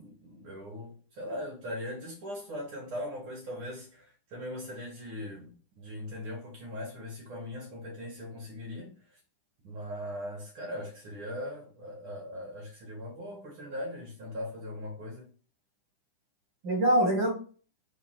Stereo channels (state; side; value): late; left; 9.9 ms